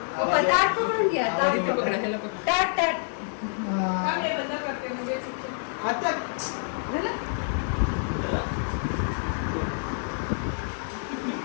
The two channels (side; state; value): right; silent; digital silence